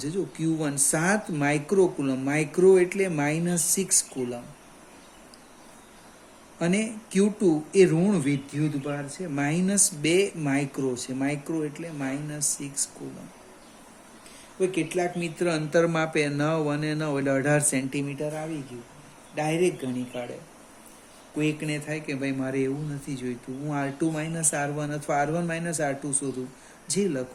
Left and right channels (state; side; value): identical; both; correlation 1.00